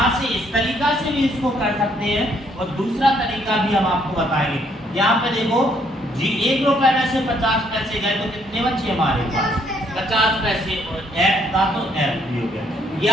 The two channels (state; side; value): normal; both; correlation 0.68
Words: से इस तरीका से भी इसको कर सकते हैं, और दूसरा तरीका भी हम आपको बताएंगे। यहाँ पे देखो जी 1 रुपए में से 50 पैसे गए तो कितने बचे हमारे पास, 50 पैसे, और f का तो f भी हो गया। या